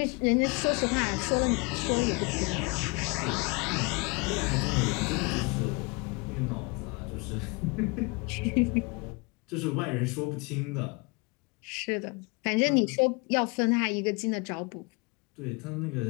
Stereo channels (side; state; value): right; quieter; 29.5 dB